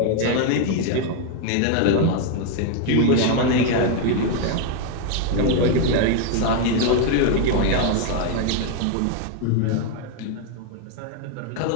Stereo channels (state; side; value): different; both; correlation 0.00